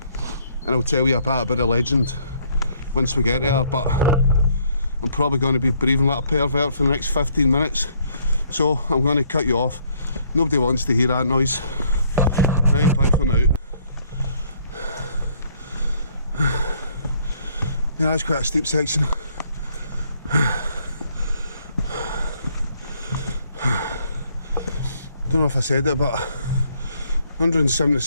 And I'll tell you a bit about the legend once we get there, but I'm probably going to be breathing like a pervert for the next 15 minutes, so I'm going to cut you off. Nobody wants to hear that noise. Right, bye for now. Yeah, that's quite a steep section. Don't know if I said it, but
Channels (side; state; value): both; inverted; correlation -0.66